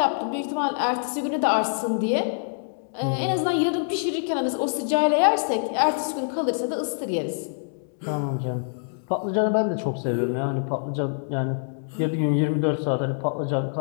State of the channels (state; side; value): silent; right; digital silence